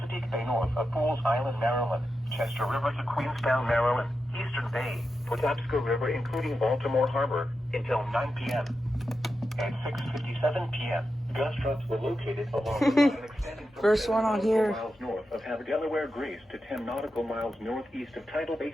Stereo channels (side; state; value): both; normal; correlation 0.89